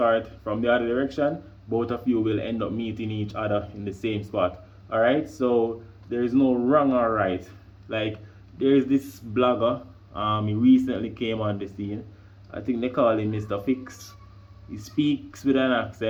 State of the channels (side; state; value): both; identical; correlation 1.00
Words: from the other direction. Both of you will end up meeting each other in the same spot. All right, so there is no wrong or right. Like, there is this blogger, he recently came on the scene. I think they call him Mr. Fix. He speaks with an